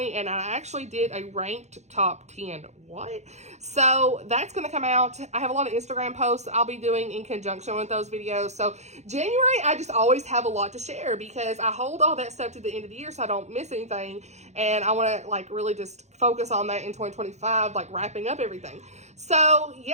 and I actually did a ranked top 10. What? So that's going to come out. I have a lot of Instagram posts I'll be doing in conjunction with those videos. So January, I just always have a lot to share because I hold all that stuff to the end of the year so I don't miss anything. And I want to like really just focus on that in 2025, like wrapping up everything. So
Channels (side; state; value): left; late; 0.33 ms